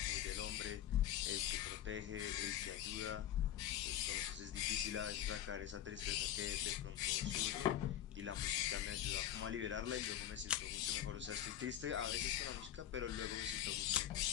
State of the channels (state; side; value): quieter; right; 11.3 dB